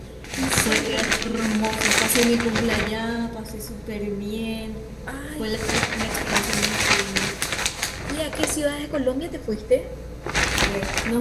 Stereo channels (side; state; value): both; identical; correlation 1.00